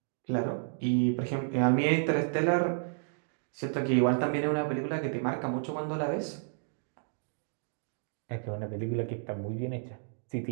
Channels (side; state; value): left; silent; digital silence